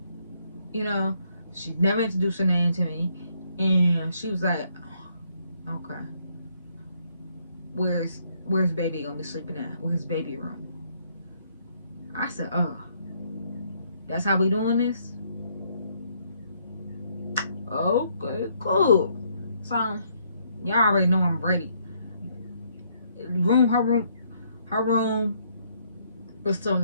you know, she never introduced her name to me, and she was like, okay, where's baby gonna be sleeping at? Where's baby room? I said, oh, that's how we doing this? Okay, cool. So y'all already know I'm ready. Her room was so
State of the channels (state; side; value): inverted; both; correlation -0.70